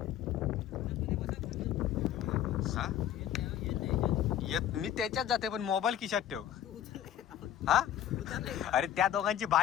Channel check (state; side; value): quieter; right; 10.8 dB